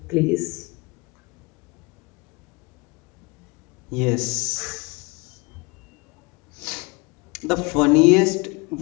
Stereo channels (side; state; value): right; quieter; 27.5 dB